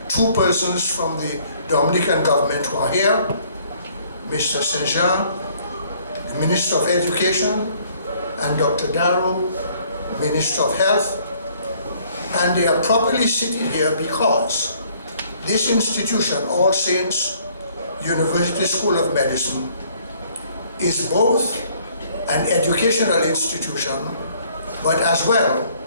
two persons from the Dominican government who are here, Mr. Saint-Jean, the the Minister of Education, and Dr. Darrow, Minister of Health. And they are properly sitting here because this institution, All Saints University School of Medicine, is both an educational institution, but as well,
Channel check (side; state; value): both; inverted; correlation -0.61